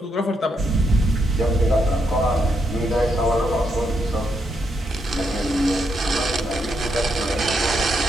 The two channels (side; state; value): both; normal; correlation 0.79